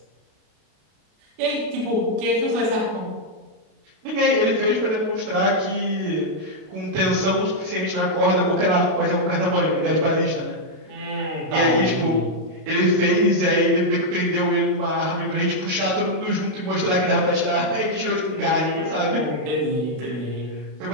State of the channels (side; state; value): left; late; 32 ms